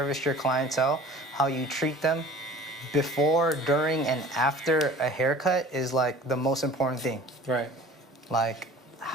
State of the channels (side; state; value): both; normal; correlation 0.45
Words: your clientele, how you treat them before, during, and after a haircut is like the most important thing. Right. Like,